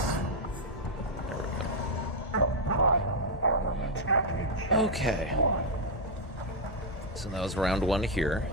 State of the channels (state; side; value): normal; both; correlation -0.02